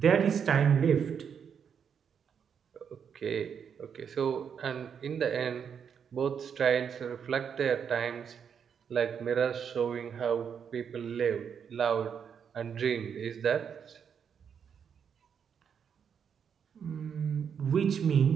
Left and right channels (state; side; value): quieter; left; 7.4 dB